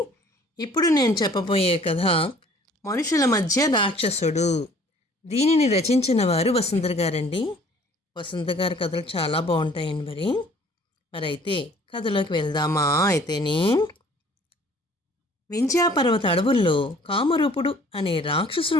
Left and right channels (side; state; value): both; normal; correlation 0.54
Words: ఇప్పుడు నేను చెప్పబోయే కథ మనుషుల మధ్య రాక్షసుడు. దీనిని రచించిన వారు వసుంధర గారండి. వసుంధర గారి కథలు చాలా బాగుంటాయండి. మరైతే కథలోకి వెళ్దామా? అయితేనే వింధ్యాపర్వత అడవుల్లో కామరూపుడు అనే